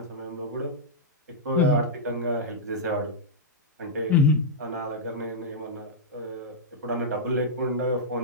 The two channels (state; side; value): normal; both; correlation -0.09